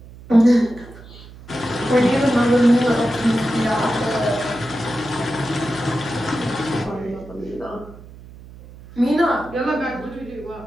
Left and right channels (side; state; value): right; noise; hum, 18 dB below the sound